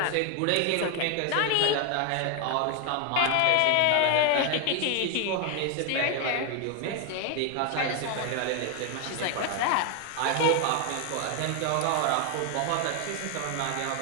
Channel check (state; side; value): different; both; correlation 0.01